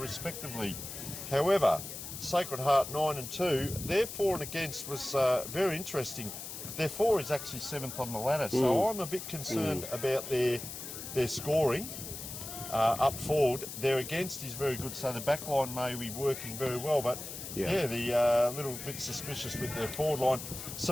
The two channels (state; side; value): noise; left; hiss, 9 dB below the sound